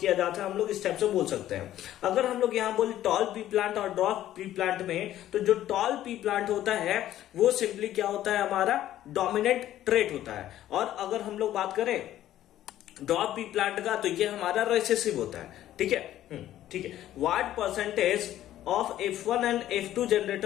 किया जाता है, हम लोग इस टाइप से बोल सकते हैं। अगर हम लोग यहाँ बोले टॉल पी प्लांट और ड्रॉप पी प्लांट में, तो जो टॉल पी प्लांट होता है वो सिंपली क्या होता है? हमारा डोमिनेंट ट्रेट होता है। और अगर हम लोग बात करें ड्रॉप पी प्लांट का, तो ये हमारा रिसेसिव होता है। ठीक है। What percentage of F1 and F2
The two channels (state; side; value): quieter; right; 12.9 dB